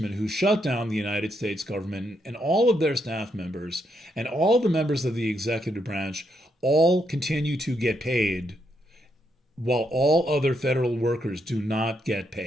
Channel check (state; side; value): normal; both; correlation 0.78